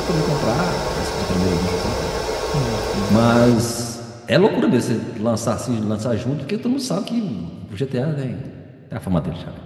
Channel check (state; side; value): identical; both; correlation 1.00